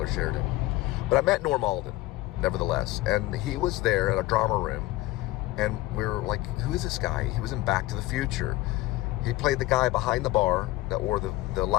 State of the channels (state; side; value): quieter; right; 18.1 dB